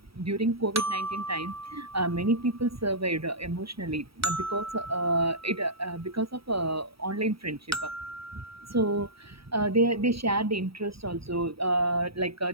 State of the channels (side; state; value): left; late; 0.76 ms